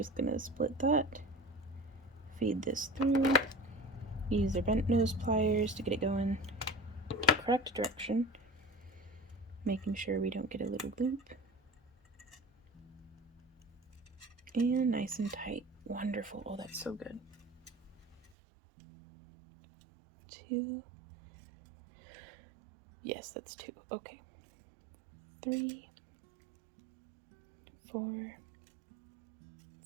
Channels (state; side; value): drops out; left; at 18.3 s